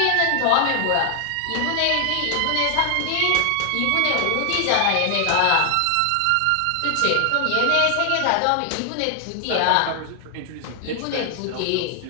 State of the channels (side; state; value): both; different; correlation 0.00